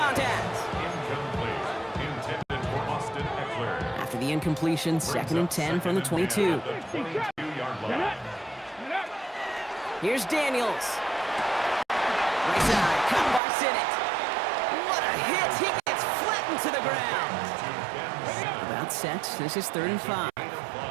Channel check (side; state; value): left; drops out; at 13.4 s